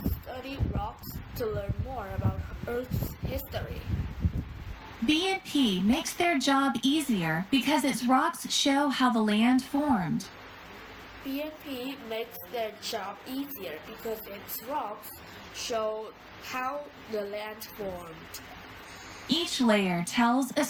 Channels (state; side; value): identical; both; correlation 1.00